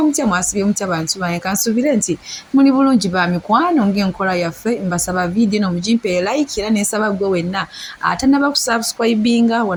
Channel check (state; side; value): identical; both; correlation 1.00